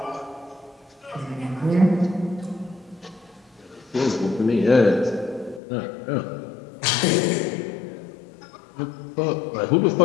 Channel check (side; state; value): right; drops out; at 5.6 s